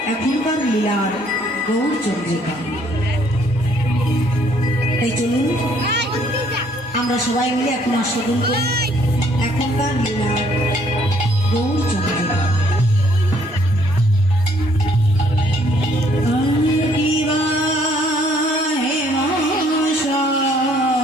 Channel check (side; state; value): both; normal; correlation 0.64